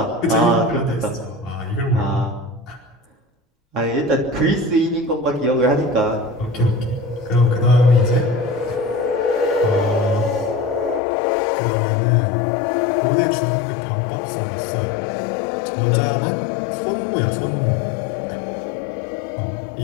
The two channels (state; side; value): drops out; right; at 11.0 s